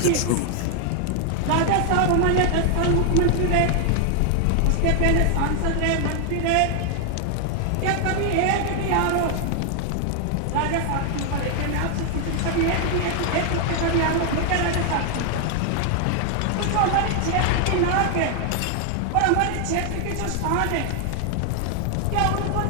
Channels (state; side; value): different; both; correlation 0.00